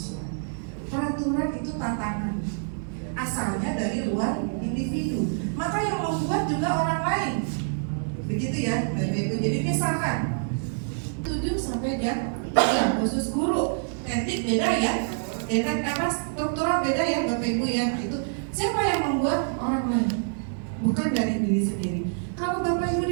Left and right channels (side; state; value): left; silent; digital silence